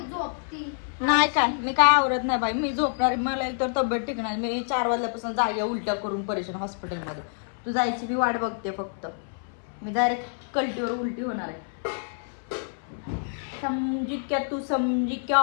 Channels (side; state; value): right; silent; 60 dB below the other